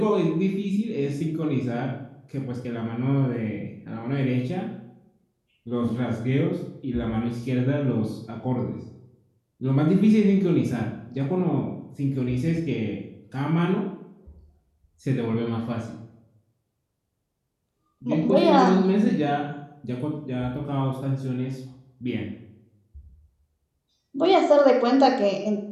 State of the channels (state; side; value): identical; both; correlation 1.00